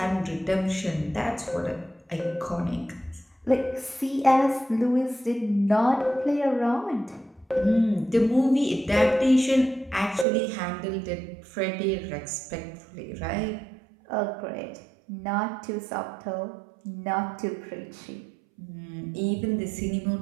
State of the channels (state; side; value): drops out; left; at 10.2 s